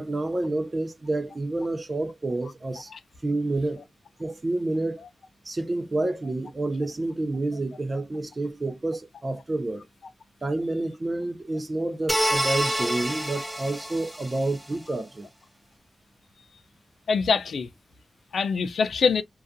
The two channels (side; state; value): both; normal; correlation 0.92